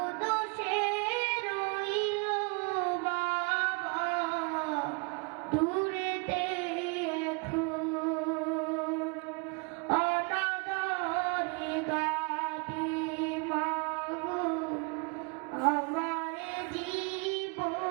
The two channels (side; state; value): left; quieter; 32.4 dB